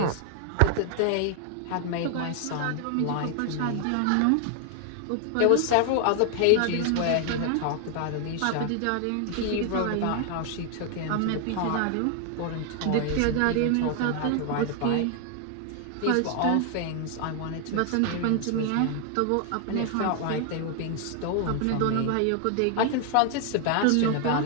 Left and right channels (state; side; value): different; both; correlation 0.00